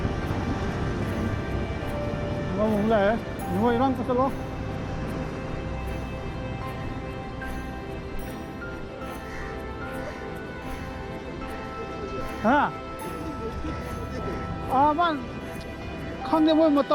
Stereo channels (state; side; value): identical; both; correlation 1.00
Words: ngon lẹ ngồi răng cái lo hả à bạn không thể một